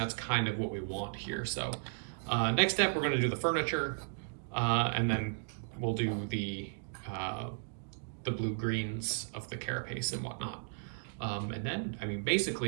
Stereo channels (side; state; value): left; silent; digital silence